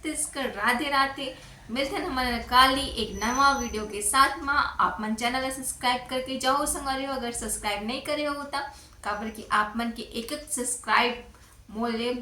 राधे राधे। मिलते हैं हमारे काली एक नवा वीडियो के साथ में। आप मन चैनल सब्सक्राइब करके जाओ संगवारी हो अगर सब्सक्राइब नहीं करे हो तो काबर कि आप मन के एक सब्सक्राइब मोले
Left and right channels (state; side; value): identical; both; correlation 1.00